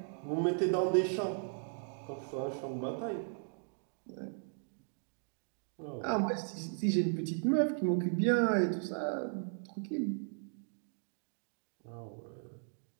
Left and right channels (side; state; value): left; silent; digital silence